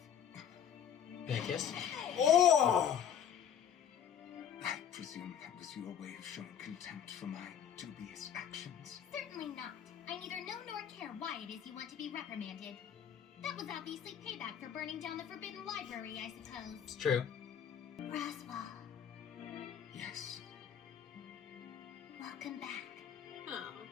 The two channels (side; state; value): right; quieter; 8.8 dB